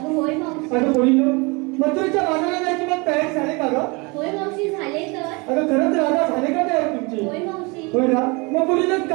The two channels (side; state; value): left; quieter; 28.1 dB